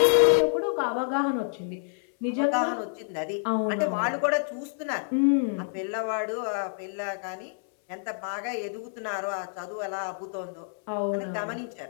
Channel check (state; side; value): silent; right; 59 dB below the other